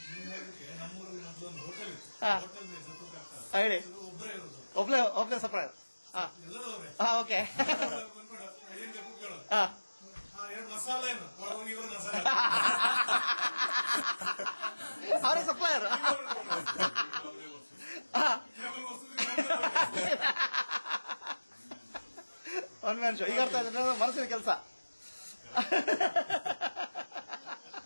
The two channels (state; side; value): inverted; both; correlation -1.00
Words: ಹೇಳಿ, ಒಬ್ಳೆ ಸಪ್ರೈಸ್. ಓಕೆ. ಅವರೇ ಸಪ್ಲೈಯರ್. One man show. ಈಗ ಅರ್ಥ ಆಯ್ತು ಮನಸ್ಸಿನ ಕೆಲಸ.